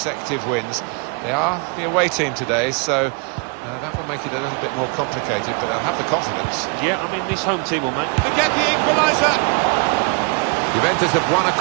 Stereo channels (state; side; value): quieter; left; 34.3 dB